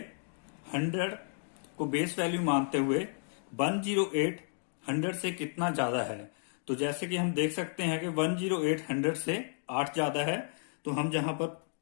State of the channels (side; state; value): right; silent; digital silence